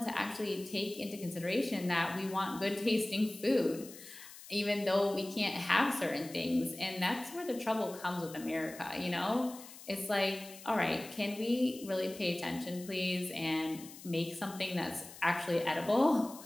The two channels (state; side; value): noise; left; hiss, 16 dB below the sound